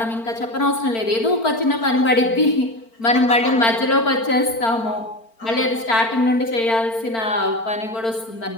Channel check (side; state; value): right; late; 4.4 ms